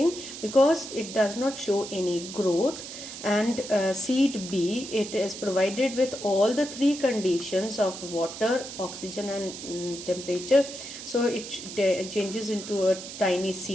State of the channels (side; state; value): right; noise; hiss, 11 dB below the sound